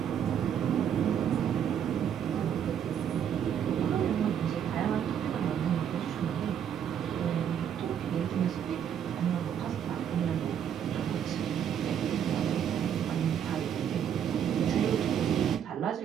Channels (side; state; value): left; quieter; 8.9 dB